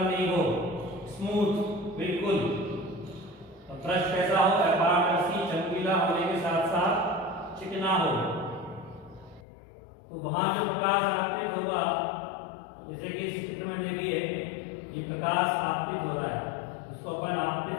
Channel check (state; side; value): drops out; right; at 9.4 s